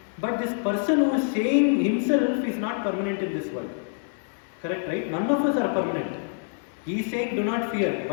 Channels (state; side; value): silent; right; 61 dB below the other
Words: But this person who is saying himself is not permanent in this world. Correct, right? None of us are permanent. He is saying do not fear,